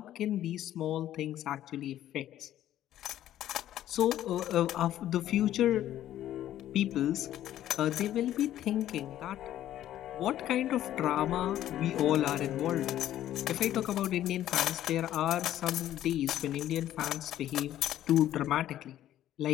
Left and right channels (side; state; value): right; quieter; 12.4 dB